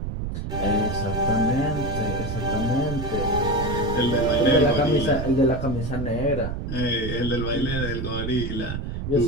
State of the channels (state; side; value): noise; right; rumble, 4 dB below the sound